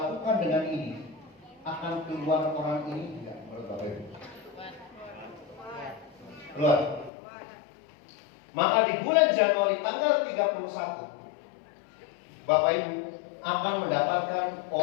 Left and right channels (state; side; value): drops out; right; at 7.1 s